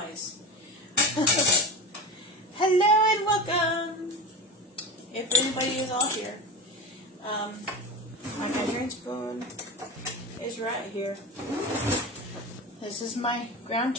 Hello and welcome. If anybody is all here, my measuring spoon is right here. This is my ground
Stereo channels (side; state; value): both; normal; correlation 0.25